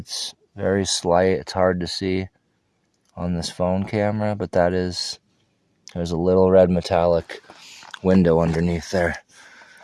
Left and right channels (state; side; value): identical; both; correlation 1.00